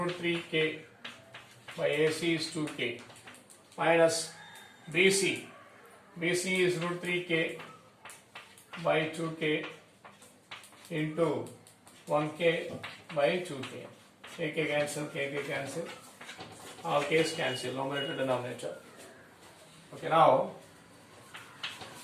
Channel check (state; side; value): identical; both; correlation 1.00